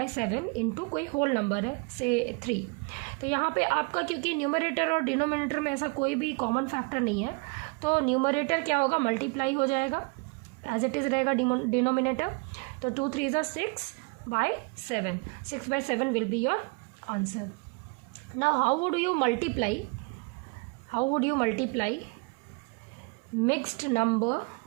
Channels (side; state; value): left; quieter; 30.6 dB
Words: इंटू कोई होल नंबर है से 3। तो यहाँ पे आपका क्योंकि न्यूमरेटर और डिनोमिनेटर में ऐसा कोई भी कॉमन फैक्टर नहीं है, तो न्यूमरेटर क्या होगा, मल्टीप्लाई हो जाएगा, एज इट इज़ रहेगा डिनोमिनेटर। तो 2 3 ज़ा 6/7, 6/7 will be your answer. Now how would you multiply mixed number,